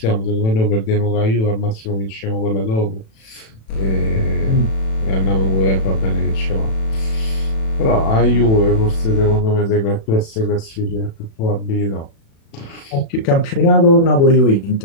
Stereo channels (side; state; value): right; late; 36 ms